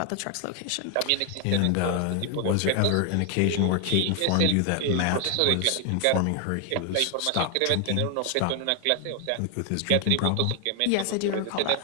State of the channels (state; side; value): different; both; correlation 0.00